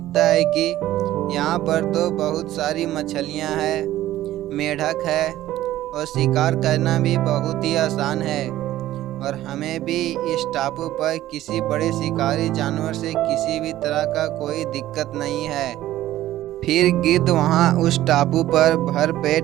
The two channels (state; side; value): quieter; left; 14.3 dB